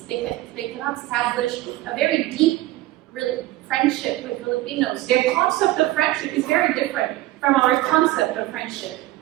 They cannot establish a very deep friendship with Filipinos. Their concept of friendship is very different from our concept of friendship.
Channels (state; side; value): quieter; left; 16.8 dB